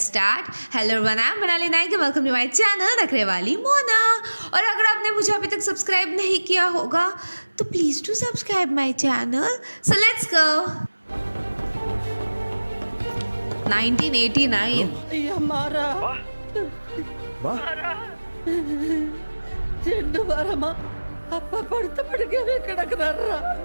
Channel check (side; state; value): both; inverted; correlation -1.00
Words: hello everyone, I'm Manali Naik and welcome to my channel नखरे वाली मोना. और अगर आपने मुझे अभी तक subscribe नहीं किया होगा तो please do subscribe my channel. So let's go. 1989. हमारा చెండు వారమా అప్ప పడితే పడికే కిడకనర్రా.